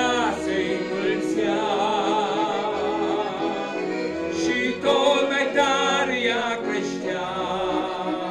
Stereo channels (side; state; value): both; identical; correlation 1.00